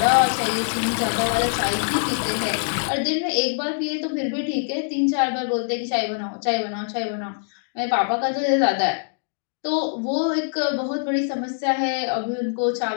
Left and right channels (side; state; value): right; silent; digital silence